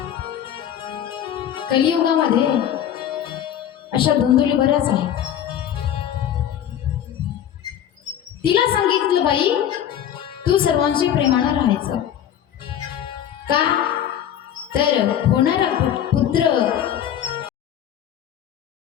कलियुगामध्ये अशा धुंदुली बऱ्याच आहेत. तिला सांगितलं बाई तू सर्वांशी प्रेमानं राहायचं. का तर होणारा पुत्र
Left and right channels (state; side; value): quieter; right; 10.2 dB